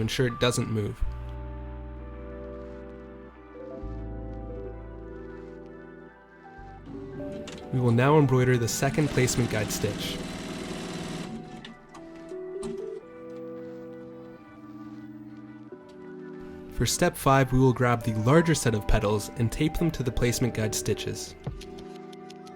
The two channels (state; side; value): identical; both; correlation 1.00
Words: ensure it doesn't move. We will now embroider the second placement guide stitch. For step 5, we will grab the larger set of petals and tape them to the placement guide stitches.